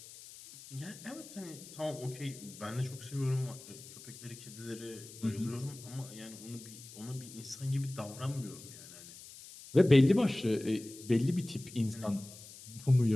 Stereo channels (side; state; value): left; noise; hiss, 16 dB below the sound